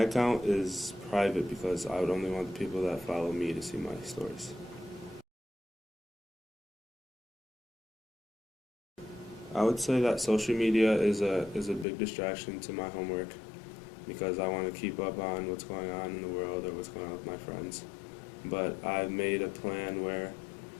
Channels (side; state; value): right; drops out; at 11.9 s